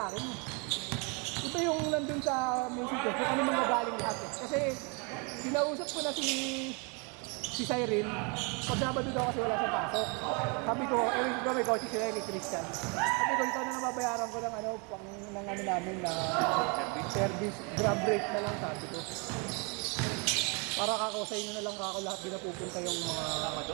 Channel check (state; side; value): quieter; left; 33.1 dB